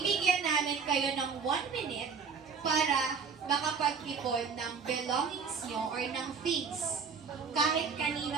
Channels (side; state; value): left; quieter; 5.8 dB